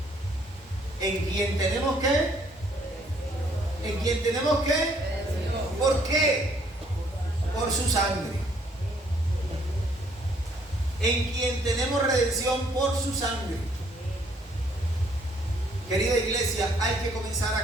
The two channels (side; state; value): both; normal; correlation 0.65